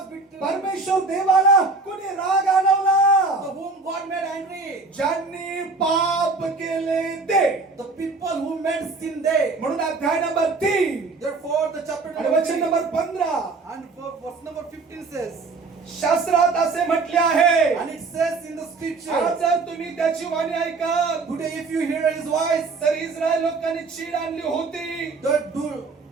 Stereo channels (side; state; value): left; quieter; 4.0 dB